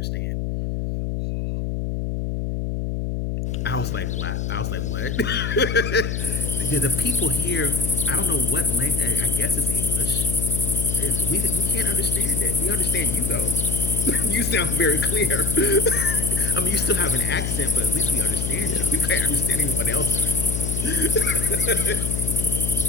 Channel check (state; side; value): noise; left; hum, 2 dB below the sound